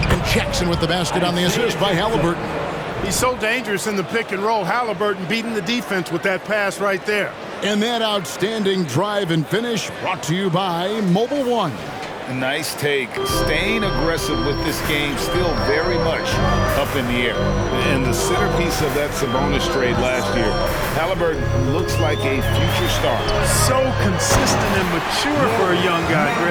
And Jackson with the basket on the assist by Halliburton. He's so dangerous in the pick and roll. Halliburton beating the defense with that pass right there. And that outstanding drive and finish brought to you by Mobile One. Nice take. Staying aggressive with this game, still very much up in the air. And the centerpiece of that Sabonis trade last year, Halliburton looks like a future star. So consistent and mature for a young guy,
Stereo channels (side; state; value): both; identical; correlation 1.00